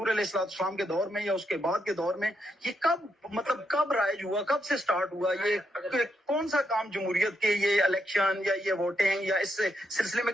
علیہ السلام کے دور میں یا اس کے بعد کے دور میں یہ کب رائج ہوا، کب سے سٹارٹ ہوا؟ یہ کون سا کام جمہوریت کے، یہ الیکشن یا یہ ووٹنگ یا اس سلسلے میں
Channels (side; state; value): both; normal; correlation 0.80